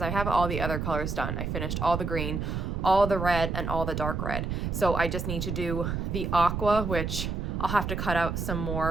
I have all the other colors done. I finished all the green, all the red, and all the dark red. So I just need to do the aqua, which I'll have to cut out some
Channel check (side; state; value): right; noise; rumble, 2 dB below the sound